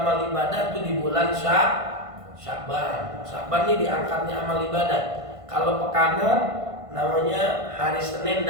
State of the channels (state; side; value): late; left; 1.5 ms